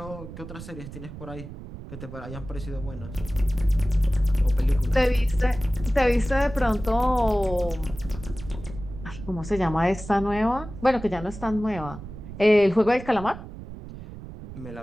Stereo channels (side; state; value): right; noise; rumble, 13 dB below the sound